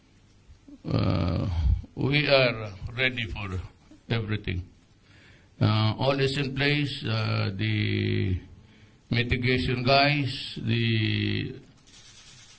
We are ready for everything. All is in place. The mitigation guys, the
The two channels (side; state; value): both; identical; correlation 1.00